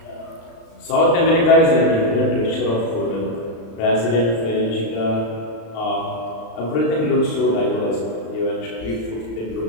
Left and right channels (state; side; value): late; right; 35 ms